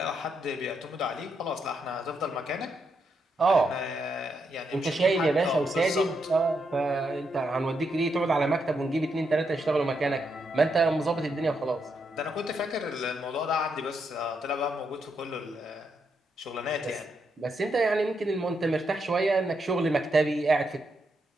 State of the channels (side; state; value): both; normal; correlation 0.80